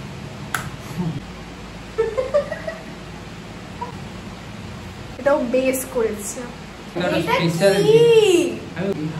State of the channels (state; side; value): identical; both; correlation 1.00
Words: এটাও বেস করেছে। এটা কি? আমি